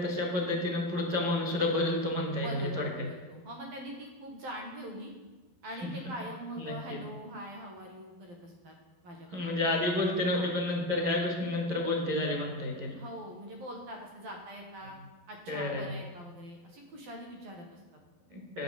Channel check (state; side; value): late; left; 11 ms